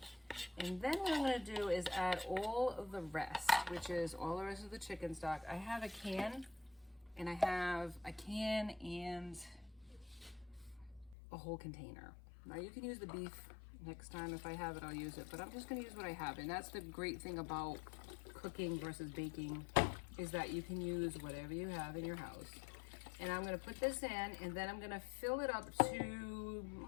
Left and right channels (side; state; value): right; drops out; at 11.2 s